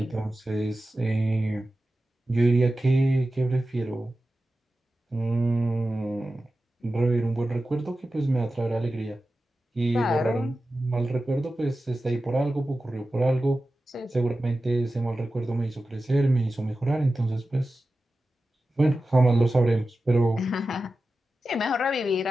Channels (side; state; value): both; normal; correlation 0.93